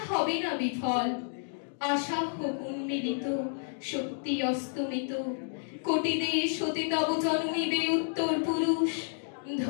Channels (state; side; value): silent; right; digital silence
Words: হবে না বিফল। আশা হোক উন্মিলিত, শক্তি অস্তমিত, কোটি দেশ হতে তব জন্মিবে উত্তর পুরুষ।